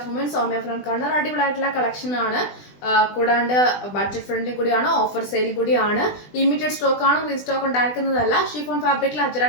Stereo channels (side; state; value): right; late; 20 ms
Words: Women. Soumya from Kannur. അടിപൊളിയായിട്ടുള്ള കളക്ഷൻ ആണ്. കൂടാണ്ട് ബഡ്ജറ്റ് ഫ്രണ്ട്ലി കൂടിയാണ്, ഓഫർ സെയിൽ കൂടിയാണ്, ലിമിറ്റഡ് സ്റ്റോക്ക് ആണ്, റീസ്റ്റോക്ക് ഉണ്ടായിരിക്കുന്നതല്ല. ഷിഫോൺ ഫാബ്രിക്കിൽ